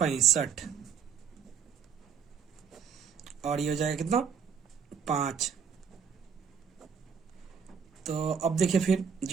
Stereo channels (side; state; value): left; quieter; 7.0 dB